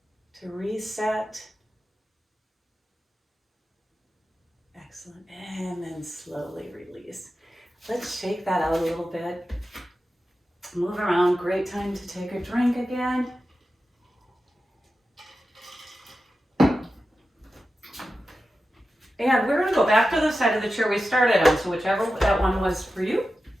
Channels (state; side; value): normal; both; correlation 0.92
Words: to reset. Excellent. And then slowly release. Let's shake that out a little bit. Move around. Great time to take a drink again. And we're going to go back to the side of the chair we started on, so whichever that one was for you.